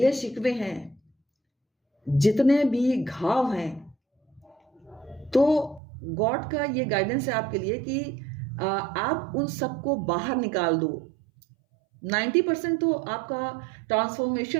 शिकवे हैं, जितने भी घाव हैं, तो गॉड का ये गाइडेंस है आपके लिए कि आप उन सबको बाहर निकाल दो। 90% तो आपका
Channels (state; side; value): drops out; left; at 5.8 s